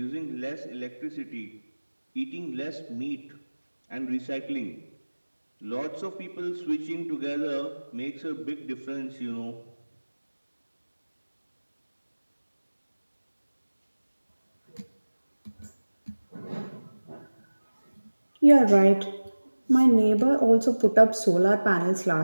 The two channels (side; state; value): both; inverted; correlation -1.00